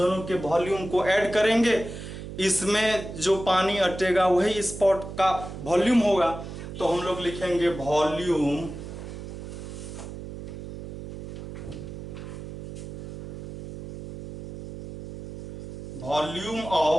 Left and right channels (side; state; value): right; noise; hum, 9 dB below the sound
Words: के वॉल्यूम को ऐड करेंगे, इसमें जो पानी अटेगा वही स्पॉट का वॉल्यूम होगा। तो हम लोग लिखेंगे वॉल्यूम